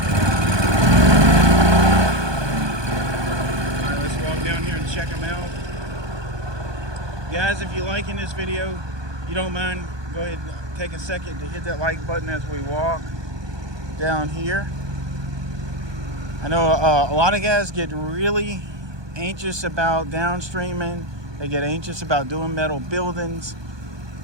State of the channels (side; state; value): left; late; 1.2 ms